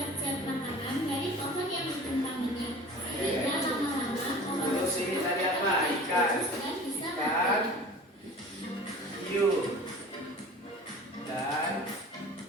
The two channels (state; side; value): normal; both; correlation 0.41